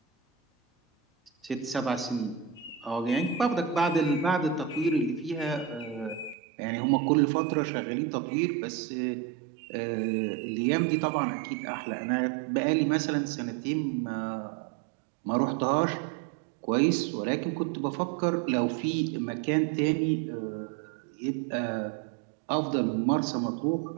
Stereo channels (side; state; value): left; drops out; at 6.4 s